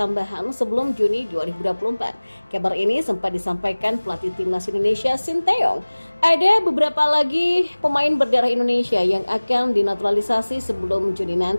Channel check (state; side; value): inverted; both; correlation -1.00